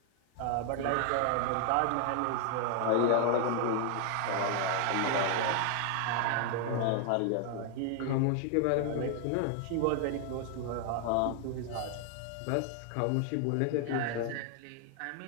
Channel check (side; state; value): both; different; correlation 0.00